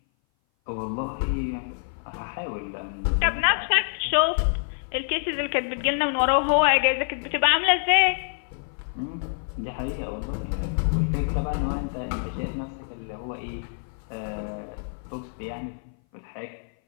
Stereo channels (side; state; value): right; silent; 57 dB below the other